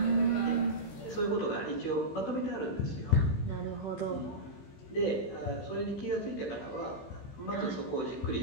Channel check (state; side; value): late; right; 15 ms